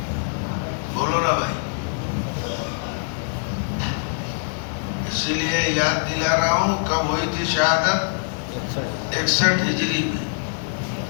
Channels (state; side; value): silent; right; 62 dB below the other